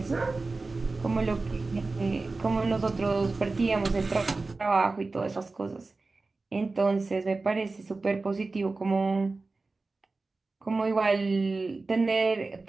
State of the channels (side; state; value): left; quieter; 3.6 dB